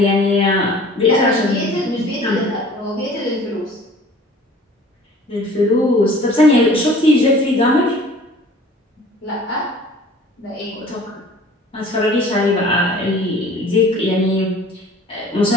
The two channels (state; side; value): normal; both; correlation 0.48